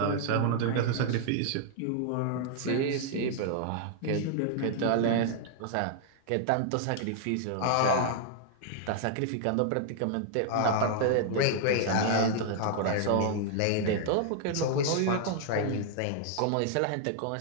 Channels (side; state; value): both; different; correlation -0.01